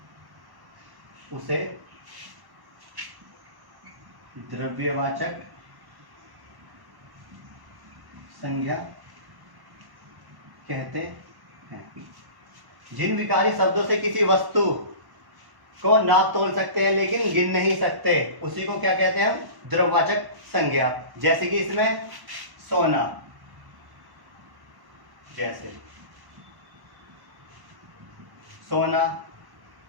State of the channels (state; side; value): late; left; 1.1 ms